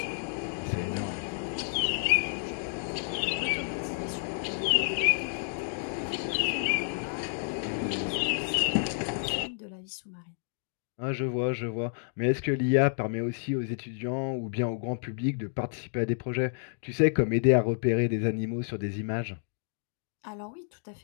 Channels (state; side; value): silent; right; digital silence